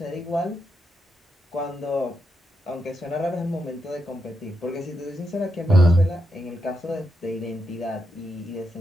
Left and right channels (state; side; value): normal; both; correlation 0.84